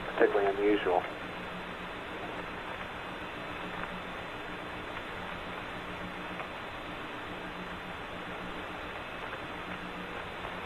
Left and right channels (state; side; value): identical; both; correlation 1.00